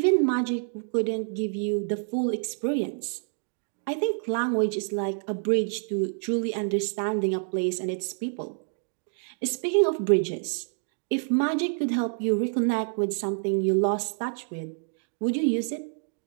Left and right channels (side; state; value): left; silent; digital silence